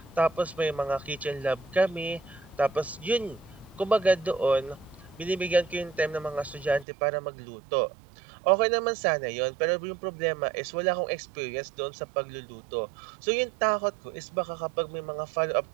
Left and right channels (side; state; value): left; drops out; at 6.9 s